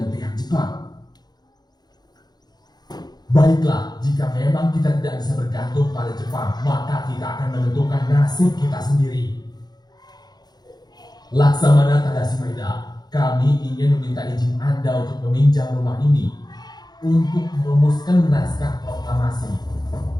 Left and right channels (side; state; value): right; late; 0.20 ms